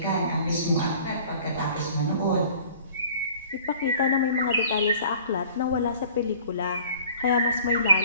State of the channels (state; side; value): inverted; both; correlation -0.50